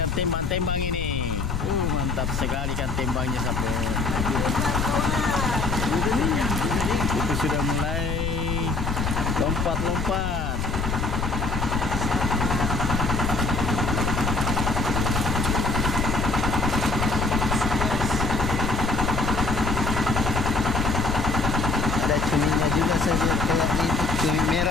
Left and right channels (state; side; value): noise; left; rumble, 3 dB below the sound